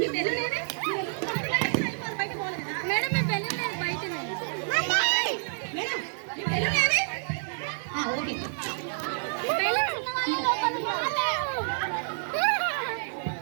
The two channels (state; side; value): silent; left; digital silence